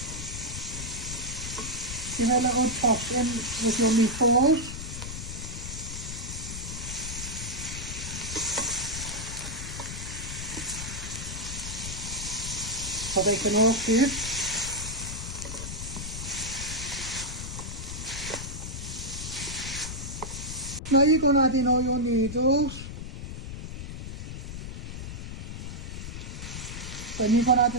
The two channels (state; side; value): noise; left; rumble, 7 dB below the sound